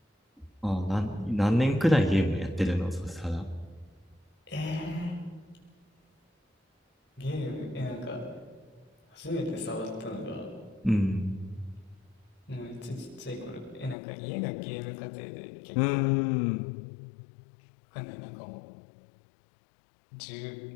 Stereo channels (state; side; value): drops out; right; at 14.0 s